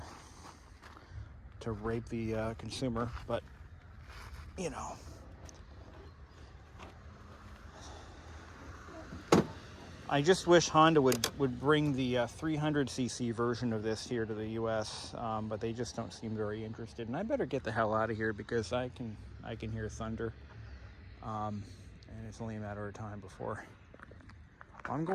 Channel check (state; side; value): identical; both; correlation 1.00